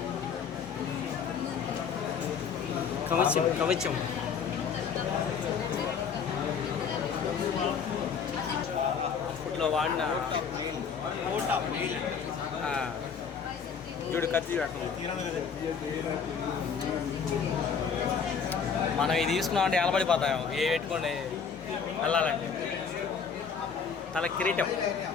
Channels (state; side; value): quieter; right; 6.4 dB